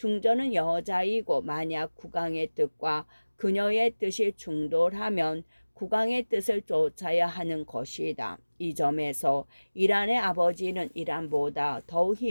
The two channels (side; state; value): both; inverted; correlation -1.00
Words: 여자이고 만약 국왕의 뜻과 그녀의 뜻이 충돌하면 국왕의 뜻을 쫓아야 하는 것이다. 이 점에서 이란의 아버지는 이란보다 더욱